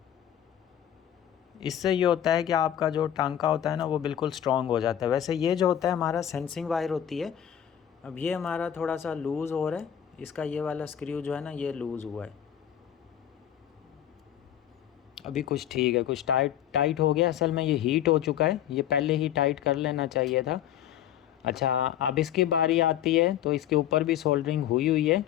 इससे ये होता है कि आपका जो टांका होता है ना वो बिल्कुल स्ट्रॉन्ग हो जाता है। वैसे ये जो होता है हमारा सेंसिंग वायर होती है। अब ये हमारा थोड़ा सा लूज़ हो रहा है, इसका ये वाला स्क्रू जो है ना ये लूज़ हुआ है। अभी कुछ ठीक है, कुछ टाइट हो गया। असल में ये हीट हो चुका है, ये पहले ही टाइट कर लेना चाहिए था। अच्छा, अब इसकी बारी आती है तो इसके ऊपर भी सोल्डरिंग हुई है।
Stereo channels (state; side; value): quieter; right; 10.6 dB